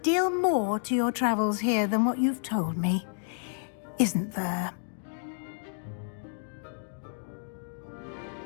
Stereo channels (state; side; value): silent; right; digital silence